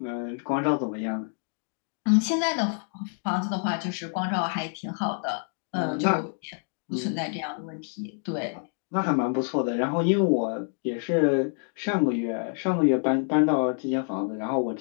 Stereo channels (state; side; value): silent; right; 56 dB below the other